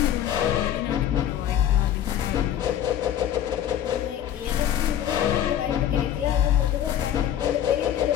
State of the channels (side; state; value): right; quieter; 10.7 dB